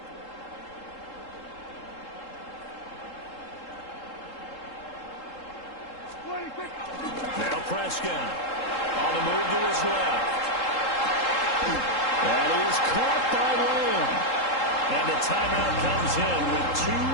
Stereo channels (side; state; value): right; late; 3.7 ms